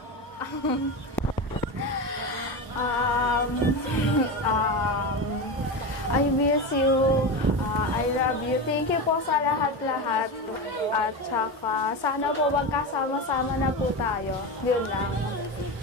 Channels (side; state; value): both; normal; correlation 0.20